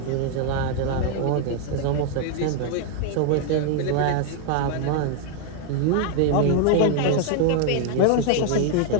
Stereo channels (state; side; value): different; both; correlation 0.00